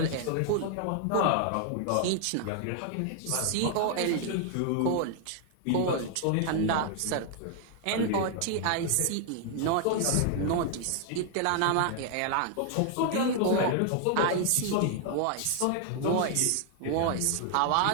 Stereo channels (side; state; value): both; different; correlation 0.00